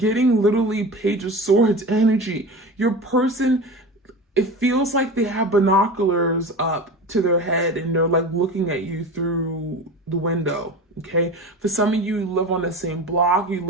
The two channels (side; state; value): both; normal; correlation 0.31